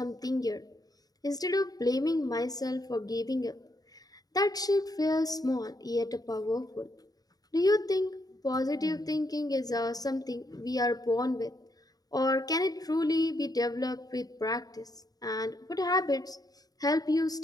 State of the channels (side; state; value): right; late; 0.18 ms